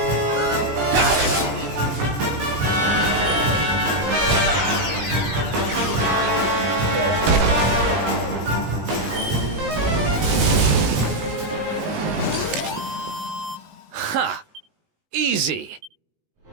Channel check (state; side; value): late; left; 19 ms